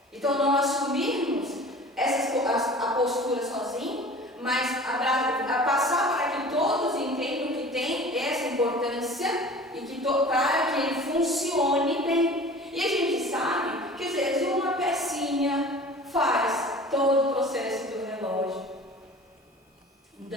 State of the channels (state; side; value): normal; both; correlation 0.42